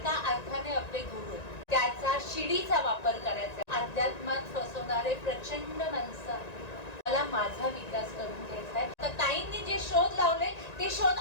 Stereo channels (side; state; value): right; late; 1.9 ms